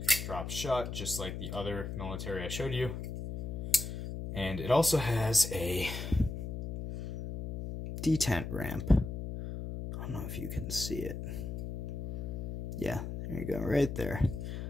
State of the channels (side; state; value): left; noise; hum, 5 dB below the sound